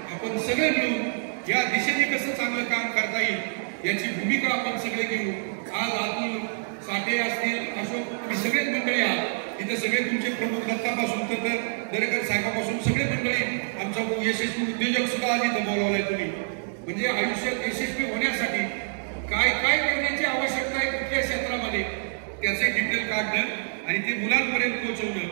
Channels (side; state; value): left; silent; digital silence